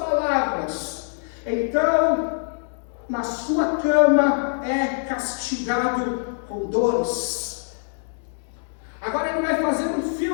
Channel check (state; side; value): silent; right; digital silence